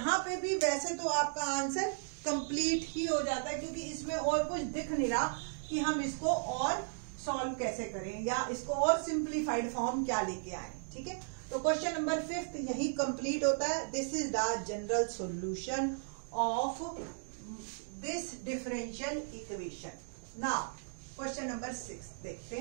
पे भी वैसे तो आपका आंसर कंप्लीट ही हो जाता है, क्योंकि इसमें और कुछ दिख नहीं रहा कि हम इसको और सॉल्व कैसे करें या इसको और सिंप्लीफाइड फॉर्म क्या लेके आए। ठीक है, तो क्वेश्चन नंबर 5 यही कंप्लीट होता है। This is the general solution of this differential equation. Now question number 6 देखते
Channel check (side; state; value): left; silent; digital silence